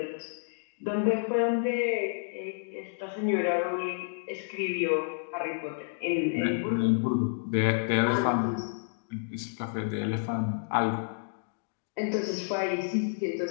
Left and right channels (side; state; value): right; silent; digital silence